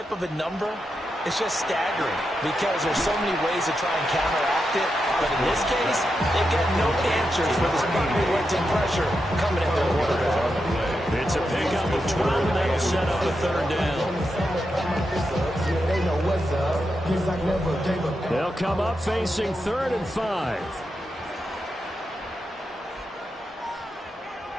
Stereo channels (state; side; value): normal; both; correlation 0.86